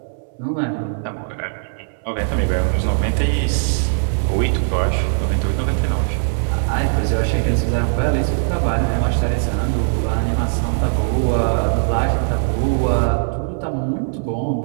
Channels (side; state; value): left; silent; 66 dB below the other